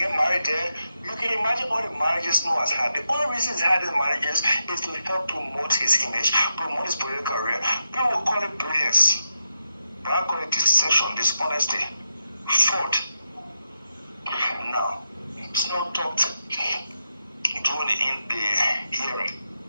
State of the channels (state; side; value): inverted; both; correlation -0.86